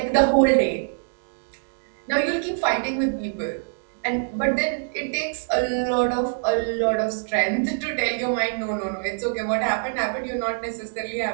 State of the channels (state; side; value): silent; left; digital silence